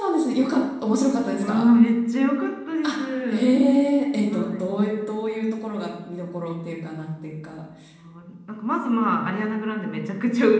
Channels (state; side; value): identical; both; correlation 1.00